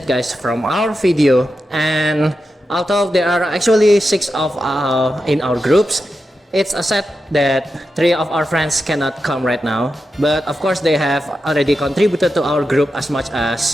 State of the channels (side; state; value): both; normal; correlation 0.89